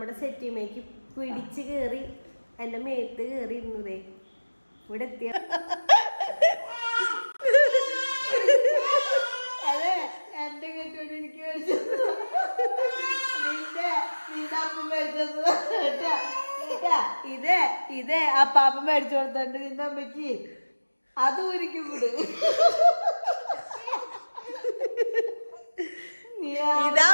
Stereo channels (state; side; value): inverted; both; correlation -1.00